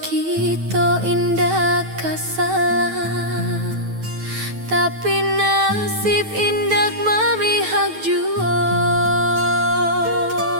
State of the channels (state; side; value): late; left; 9.2 ms